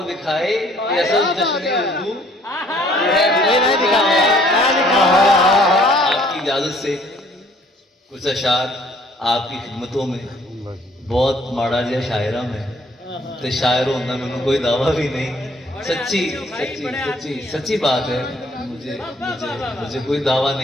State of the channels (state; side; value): normal; both; correlation 0.60